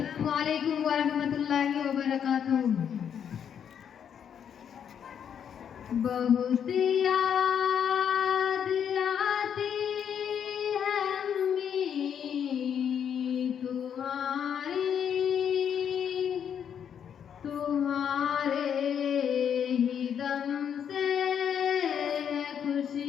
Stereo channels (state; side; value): quieter; right; 8.3 dB